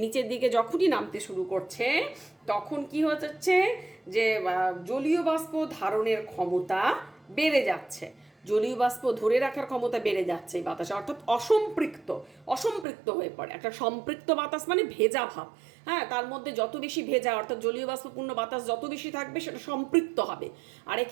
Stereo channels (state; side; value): drops out; left; at 12.9 s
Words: নিচের দিকে যখনই নামতে শুরু করছে তখন কি হচ্ছে যে জলীয় বাষ্প ধারণের ক্ষমতা বেড়ে যাচ্ছে, জলীয় বাষ্প ধরে রাখার ক্ষমতা বেড়ে যাচ্ছে এই বাতাসে, অর্থাৎ অসম্পৃক্ত হয়ে পড়ে। একটা সম্পৃক্ত বাতাস মানে ভেজা ভাব, হ্যাঁ, তার মধ্যে যত বেশি ভেজা অর্থাৎ জলীয় বাষ্পপূর্ণ বাতাস যত বেশি থাকবে সেটা সম্পৃক্ত হবে। আর